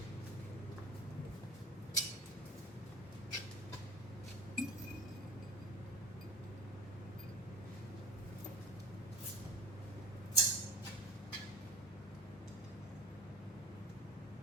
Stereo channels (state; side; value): normal; both; correlation 0.35